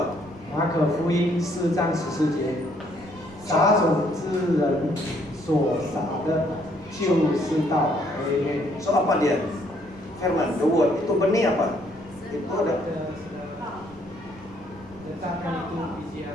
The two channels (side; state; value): right; noise; rumble, 21 dB below the sound